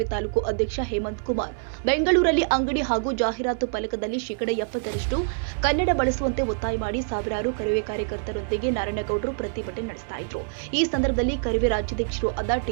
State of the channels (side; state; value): left; silent; 61 dB below the other